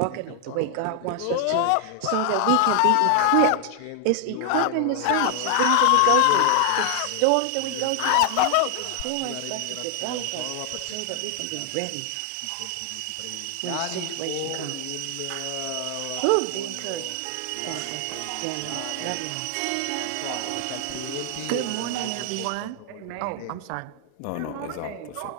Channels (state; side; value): different; both; correlation 0.00